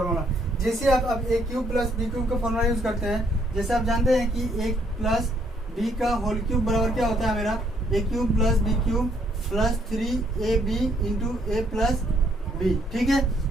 जैसे आप अब a³ प्लस b³ का फॉर्मूला यूज करते हैं, जैसे आप जानते हैं कि a प्लस b का होल क्यूब बराबर क्या होता है मेरा a³ plus b³ plus 3ab into a plus b। ठीक है,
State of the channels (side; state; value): both; normal; correlation 0.69